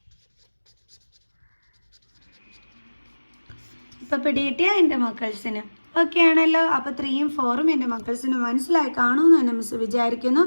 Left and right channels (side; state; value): both; inverted; correlation -1.00